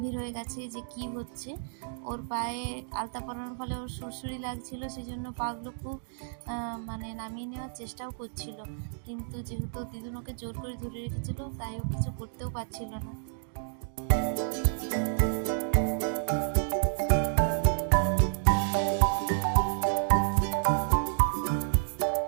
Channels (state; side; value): silent; left; digital silence